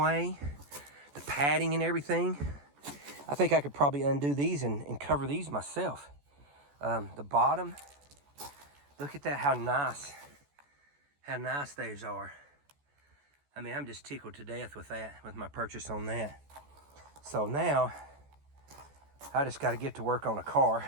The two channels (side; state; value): left; late; 14 ms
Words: The padding and everything. I think I could probably undo these and cover these myself. The bottom, look at that, how nice those are. I mean, I'm just tickled to death with that, with my purchase on that. So now, I just got to get to work on a car.